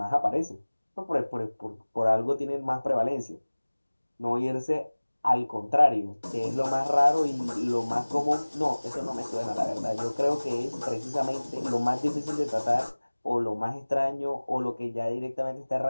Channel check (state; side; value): inverted; both; correlation -1.00